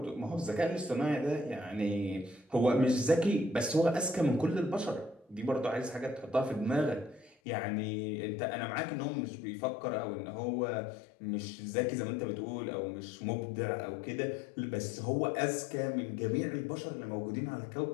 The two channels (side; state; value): right; drops out; at 7.4 s